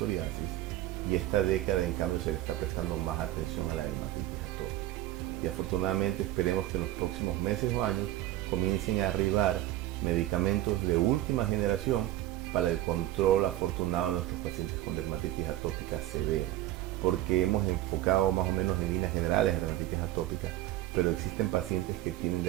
y esta década en cambio se le está prestando más atención a la dermatitis atópica. Y afortunadamente esperemos que en los próximos meses o años comiencen a arribar medicamentos de última generación para el control afortunado de nuestros pacientes con dermatitis atópica severa, porque hemos enfocado más o menos en líneas generales de dermatitis atópica, pero existen pacientes que tienen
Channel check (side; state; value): left; quieter; 14.7 dB